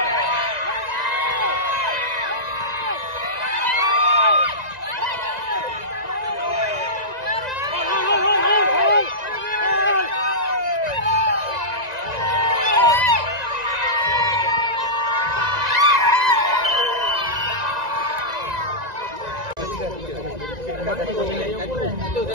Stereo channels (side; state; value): left; late; 1.9 ms